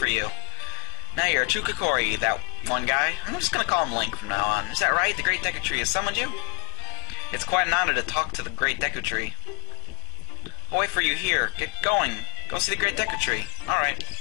you. Now you're a true Kokori, that one guy. I'm just gonna call him Link from now on. Is that right? The Great Deku Tree has summoned you? It's quite an honor to talk to the Great Deku Tree. I'll wait for you here. Get going. Go see the Great Deku Tree. Alright.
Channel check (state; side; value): quieter; right; 36.2 dB